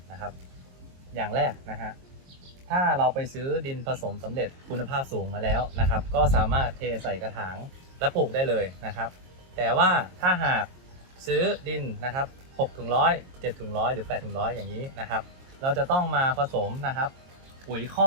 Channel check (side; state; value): left; late; 22 ms